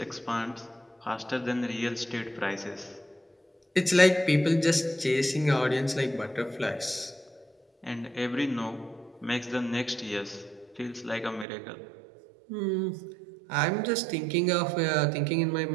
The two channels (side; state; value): left; drops out; at 11.5 s